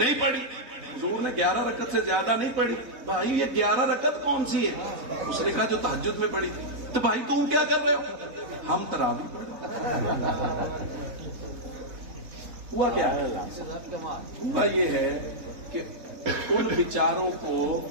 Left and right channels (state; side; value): late; left; 4.0 ms